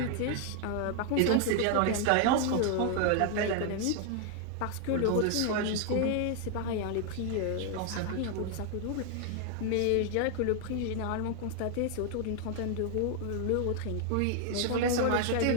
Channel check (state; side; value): different; both; correlation 0.00